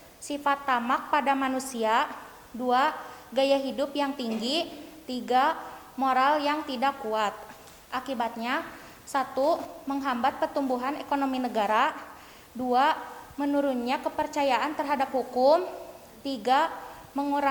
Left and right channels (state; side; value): identical; both; correlation 1.00